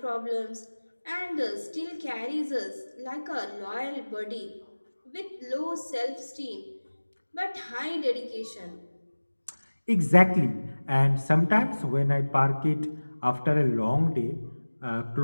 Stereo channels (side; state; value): both; inverted; correlation -1.00